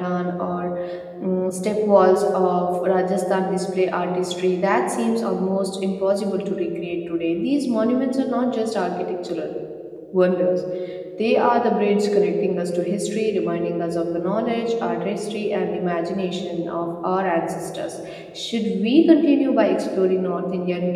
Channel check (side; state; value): both; identical; correlation 1.00